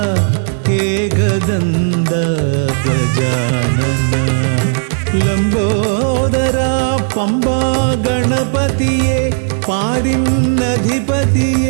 ഏകദന്ത ഗജാനന. ലംബോദര പമ്പ ഗണപതിയെ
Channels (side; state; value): left; silent; digital silence